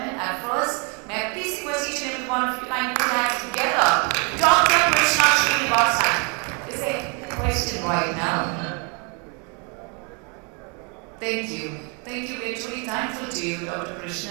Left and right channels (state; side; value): quieter; left; 34.4 dB